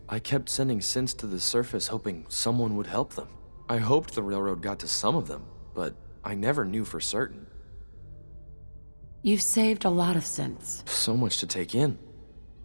I kept sending synths to the surface hoping someone would help them. I hoped the railroad got to some of them, but I never knew for certain. You've saved a lot of synths. So much to take in.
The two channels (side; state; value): both; inverted; correlation -1.00